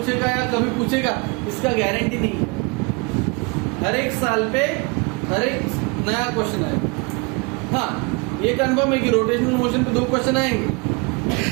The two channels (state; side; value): quieter; left; 29.4 dB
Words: या कभी पूछेगा, इसका गारंटी नहीं है। हर एक साल पे हर एक नया क्वेश्चन आएगा। हाँ, ये कन्फर्म है कि रोटेशनल मोशन पे 2 क्वेश्चन आएंगे।